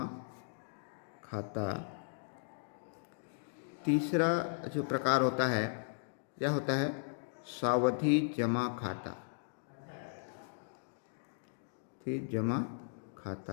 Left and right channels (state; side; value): silent; right; digital silence